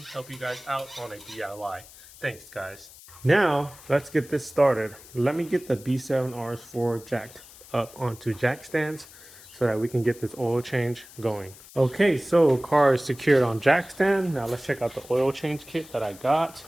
help you guys out on a DIY. Thanks guys. Now, let's get this started. Let me get the B7 RS4 jacked up onto jack stands so that we can get this oil change going. Okay, so car is secured on jack stand. Now let's check out the oil change kit that I got.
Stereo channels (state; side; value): noise; left; hiss, 20 dB below the sound